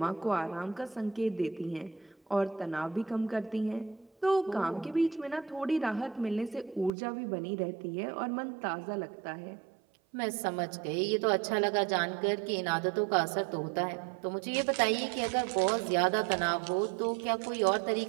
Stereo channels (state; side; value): drops out; left; at 6.9 s